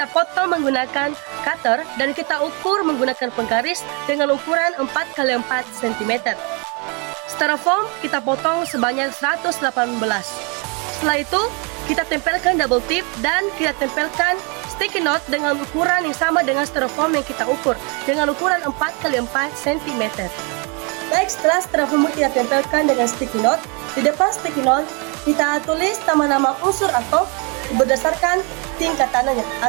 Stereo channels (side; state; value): left; quieter; 33.3 dB